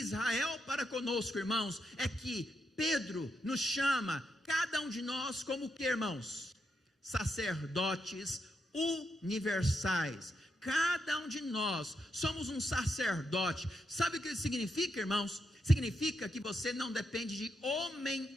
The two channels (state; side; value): normal; both; correlation 0.82